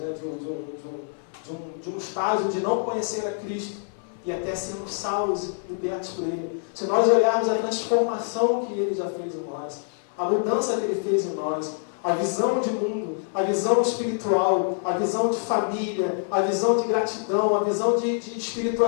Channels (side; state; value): right; silent; digital silence